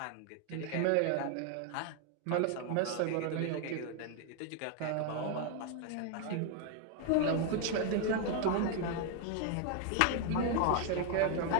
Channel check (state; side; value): different; both; correlation 0.01